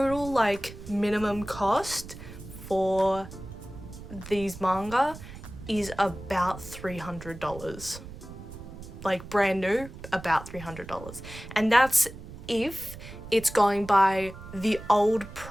like minimum cost for these manga is about $300. Like brand new, about $300. And that's if it's going by the old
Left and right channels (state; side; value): noise; right; rumble, 14 dB below the sound